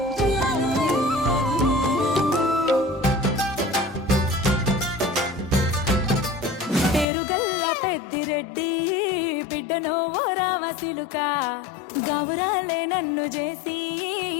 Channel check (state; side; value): drops out; right; at 7.1 s